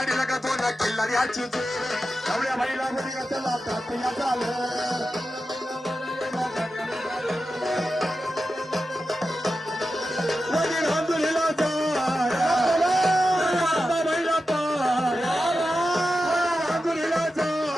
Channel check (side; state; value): both; normal; correlation 0.91